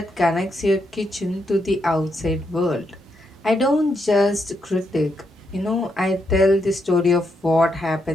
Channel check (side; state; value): both; normal; correlation 0.80